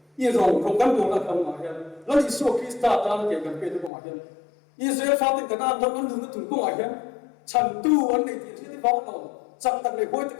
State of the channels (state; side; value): drops out; right; at 3.9 s